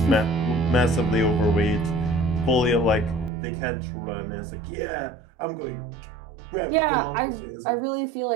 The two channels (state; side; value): drops out; left; at 3.3 s